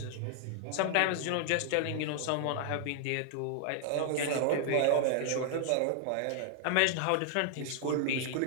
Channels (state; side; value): different; both; correlation 0.00